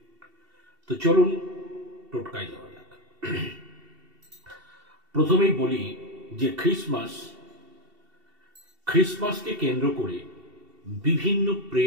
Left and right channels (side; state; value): left; late; 2.7 ms